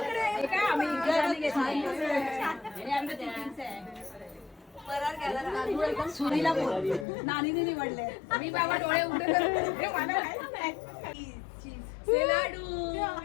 आम्ही सुरीला बोल नानीने निवडले मी बाबा डोळे उघडे करून लाडू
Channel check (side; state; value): right; drops out; at 7.1 s